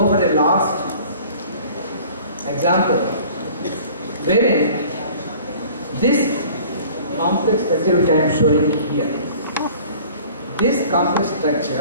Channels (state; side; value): inverted; both; correlation -0.48